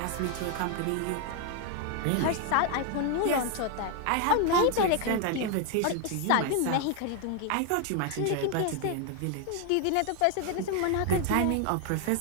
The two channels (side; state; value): both; different; correlation 0.00